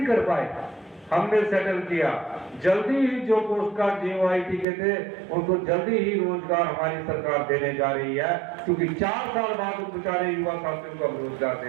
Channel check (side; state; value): left; drops out; at 4.7 s